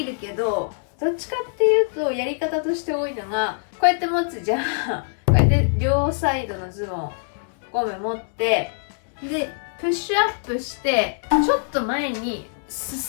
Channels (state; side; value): silent; right; 63 dB below the other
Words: るけど、どっちかっていうとやり方として多いのが、こうやって持つじゃん。こうやって両サイドのズボンゴム持って、でプッシュアップしてちょっと前に